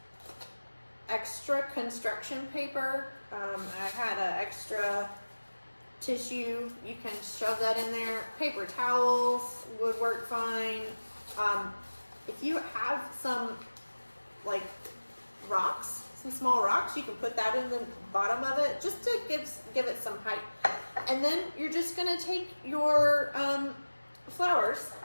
extra construction paper. I had an extra tissue. You can shove that in there. Paper towels would work fine. If you have some like rocks, some small rocks, you can put that in the bottom of it just to give it some height. And then you're just gonna take your flowers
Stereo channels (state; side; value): inverted; both; correlation -1.00